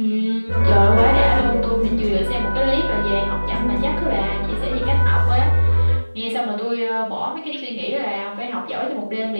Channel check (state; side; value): inverted; both; correlation -1.00